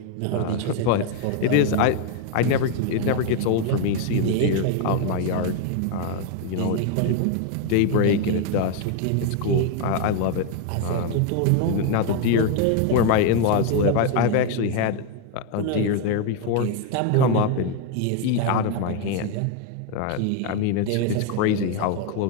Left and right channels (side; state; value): both; different; correlation 0.01